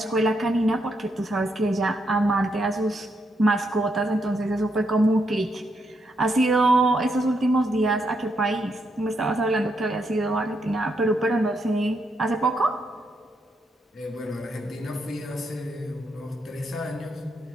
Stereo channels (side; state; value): both; normal; correlation 0.79